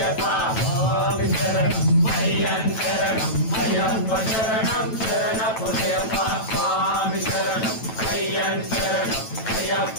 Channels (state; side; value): late; right; 9.1 ms